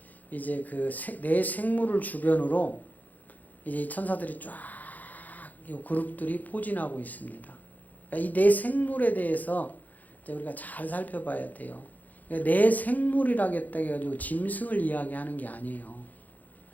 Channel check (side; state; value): right; late; 0.081 ms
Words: 이제 그 내 생물을 주변으로 이제 천사들이 쫙 이 그룹들이 포진하고 있습니다. 그러니까 이 내 생물에 대해서 이제 우리가 잘 살펴봐야 돼요. 그러니까 내 생물이라겠다 해가지고 짐승을 이야기하는 게 아니에요.